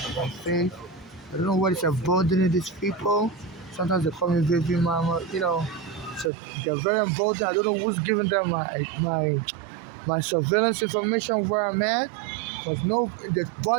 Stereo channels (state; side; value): drops out; left; at 6.3 s